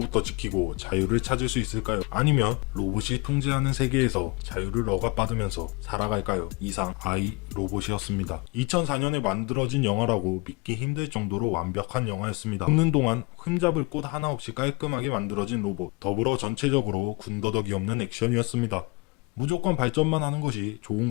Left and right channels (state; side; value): quieter; right; 26.8 dB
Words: 지키고 자유를 찾을 수 있을까요? 아니면 로봇이 통제하는 세계에서 자유를 억압받으면서 살아갈까요? 이상 아이 로봇이었습니다. 2004년에 만들어진 영화라고 믿기 힘들 정도로 완벽한 영화였습니다. 찍는 동안 흠잡을 곳 하나 없이 깔끔하게 만들어진 로봇, 더불어 전체적으로 군더더기 없는 액션이었습니다. 무조건 발전만 하는 것이 좋은